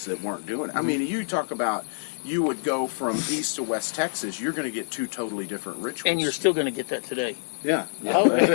that weren't doing it. I mean, you talk about you would go from East to West Texas, you're going to get 2 totally different rituals. And you're still going to get that today. Yeah.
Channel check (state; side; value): silent; right; digital silence